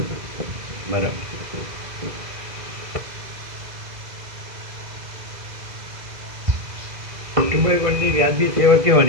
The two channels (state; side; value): late; left; 2.0 ms